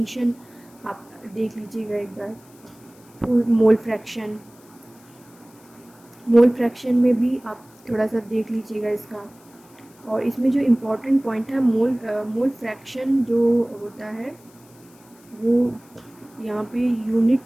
आप देख लीजिएगा एक बार। फिर मोल फ्रैक्शन में भी आप थोड़ा सा देख लीजिएगा इसका। और इसमें जो इम्पोर्टेंट पॉइंट है, मोल फ्रैक्शन जो होता है वो यहाँ पे यूनिट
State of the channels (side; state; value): left; noise; hiss, 28 dB below the sound